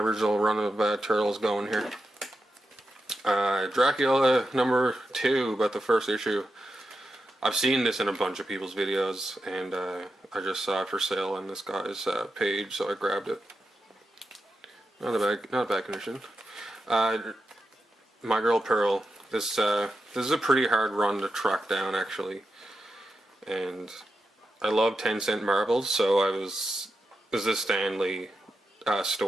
run of Turtles going here. Dracula number 2, but the first issue. I've seen this in a bunch of people's videos, and I just saw it for sale on this guy's page, so I grabbed it. Not a bad condition. My Girl Pearl. This is a pretty hard run to track down actually, and I love 10-cent marbles, so this is a Stan Lee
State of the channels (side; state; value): both; normal; correlation 0.88